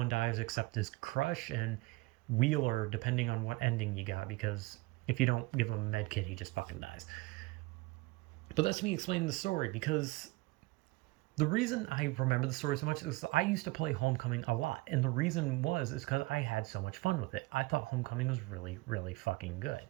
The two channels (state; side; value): quieter; left; 21.6 dB